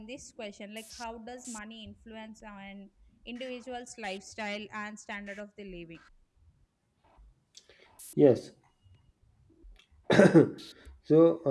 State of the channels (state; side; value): identical; both; correlation 1.00